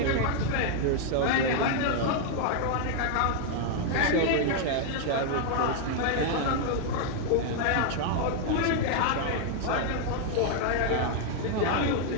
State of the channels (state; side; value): different; both; correlation 0.00